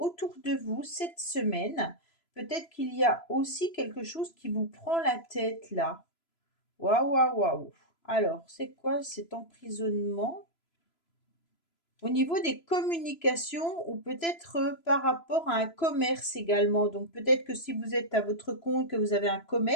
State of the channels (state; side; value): late; right; 3.0 ms